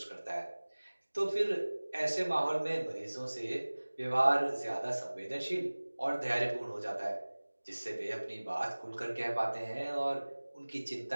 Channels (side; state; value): both; inverted; correlation -1.00